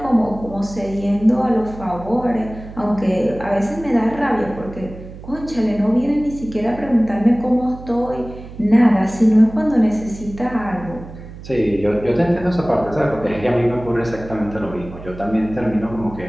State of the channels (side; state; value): right; noise; hum, 14 dB below the sound